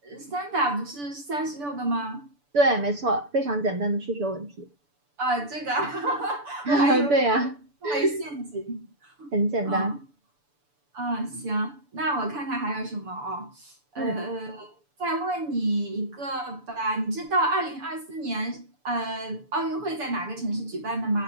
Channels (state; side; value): late; left; 6.9 ms